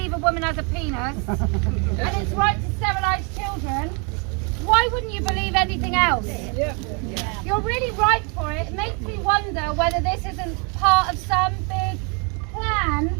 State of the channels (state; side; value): quieter; left; 34.6 dB